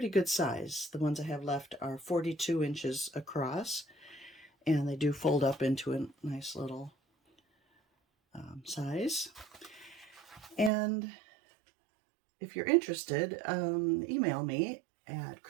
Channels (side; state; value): left; drops out; at 10.7 s